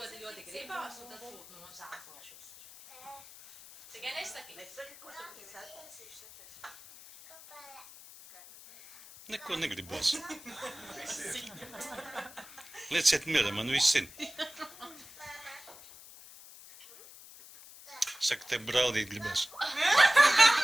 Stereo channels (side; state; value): left; noise; hiss, 18 dB below the sound